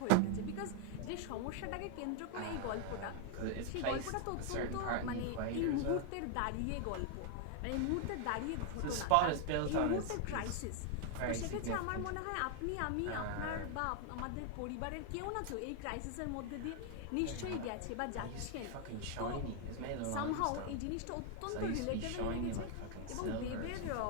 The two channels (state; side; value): different; both; correlation 0.00